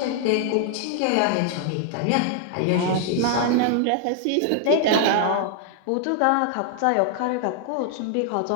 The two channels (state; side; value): different; both; correlation 0.00